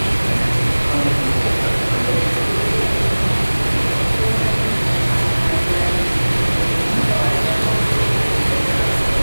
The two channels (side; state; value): both; inverted; correlation -1.00